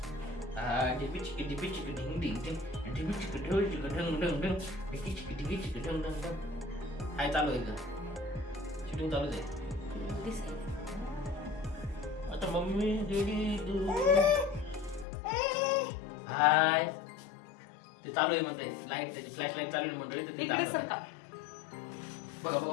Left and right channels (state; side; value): drops out; right; at 15.1 s